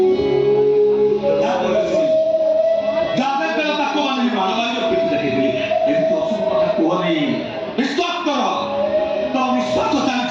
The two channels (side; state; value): both; identical; correlation 1.00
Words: ଯାହା ବେଳ ତାକୁ ମାନେ ମାରବାରୀ ପିଠି ଦେଖେଇଥିଲି। ଏମିତି ଅଶୁଭ କଥା କୁହନି, ବିଶ୍ୱାସ କର। ତମ ନିଶ୍ୱାସ